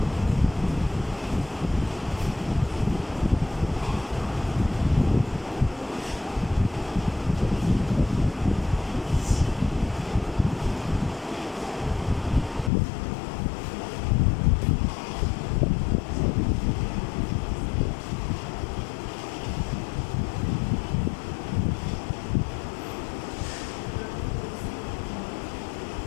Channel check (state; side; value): drops out; right; at 12.7 s